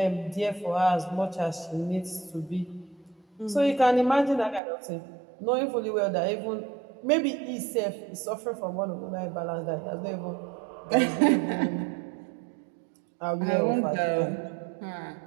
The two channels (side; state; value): left; drops out; at 4.6 s